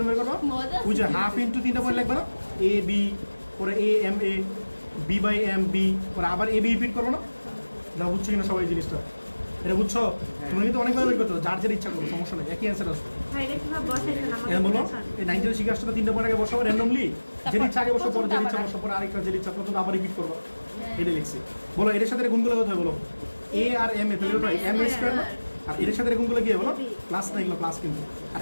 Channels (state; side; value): inverted; both; correlation -1.00